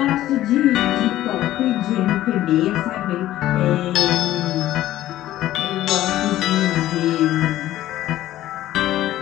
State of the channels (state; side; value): quieter; right; 14.2 dB